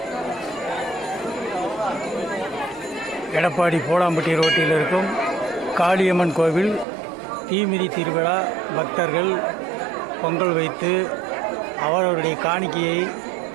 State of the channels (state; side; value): drops out; left; at 6.9 s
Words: எடப்பாடி போலாம்பட்டி ரோட்டில் இருக்கும் காளியம்மன் கோவில் தீமிதி திருவிழா பக்தர்கள் பொங்கல் வைத்து அவரவருடைய காணிக்கையை